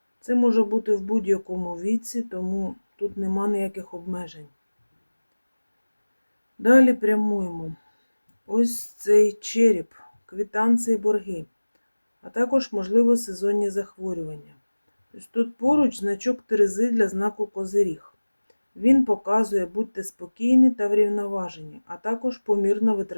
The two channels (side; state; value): both; inverted; correlation -1.00